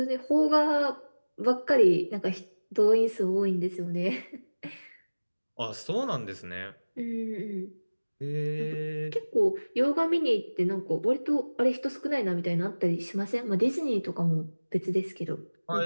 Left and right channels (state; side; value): inverted; both; correlation -1.00